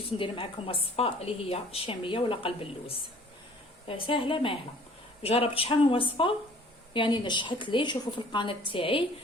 ندير معكم وصفه اللي هي شاميه ولا قلب اللوز. سهله ماهله. جربت شحال من وصفه يعني نجحت لي. شوفوا في القناه تاعي.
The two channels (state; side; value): normal; both; correlation 0.53